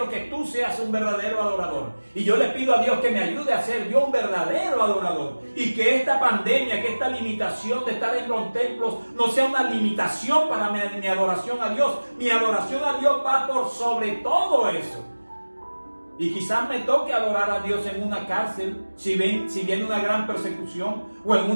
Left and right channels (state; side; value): inverted; both; correlation -1.00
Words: que tú seas un verdadero adorador, y yo le pido a Dios que me ayude a ser yo un verdadero adorador, y que esta pandemia, que esta limitación de estar en los templos no sea una limitación para mi adoración a Dios. Mi adoración a Dios va por sobre todo eso. Y quizás me toque adorar a Dios en una cárcel, si viene una gran persecución, o en